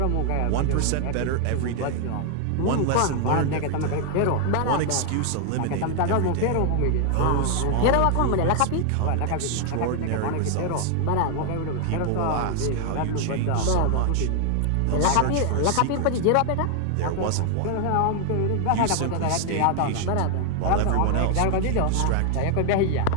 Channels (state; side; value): different; both; correlation 0.00